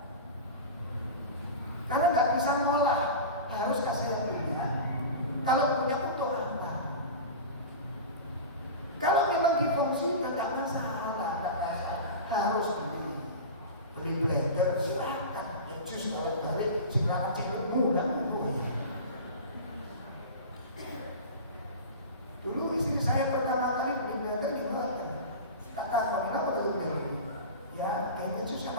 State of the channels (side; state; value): both; inverted; correlation -0.30